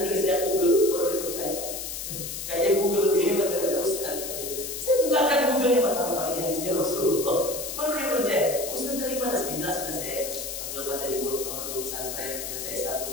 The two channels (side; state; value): left; noise; hiss, 6 dB below the sound